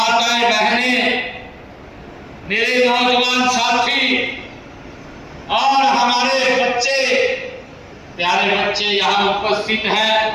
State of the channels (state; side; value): identical; both; correlation 1.00